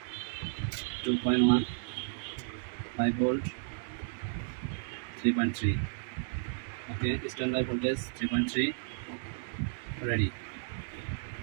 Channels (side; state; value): left; silent; digital silence